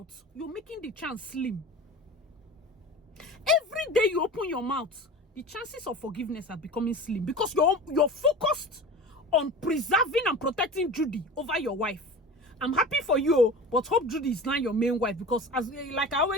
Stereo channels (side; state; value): both; normal; correlation 0.35